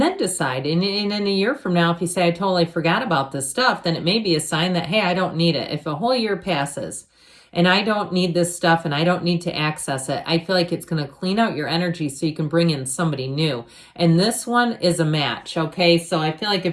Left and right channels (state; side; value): identical; both; correlation 1.00